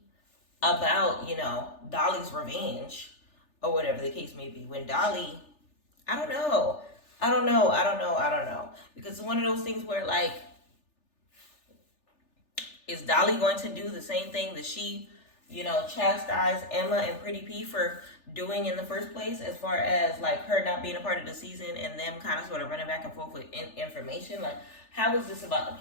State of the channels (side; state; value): right; late; 3.4 ms